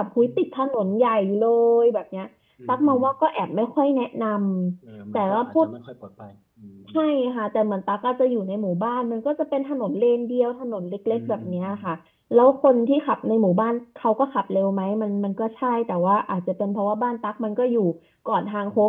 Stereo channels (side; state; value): both; identical; correlation 1.00